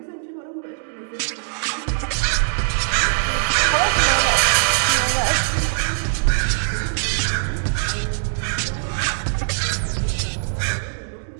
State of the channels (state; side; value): silent; left; digital silence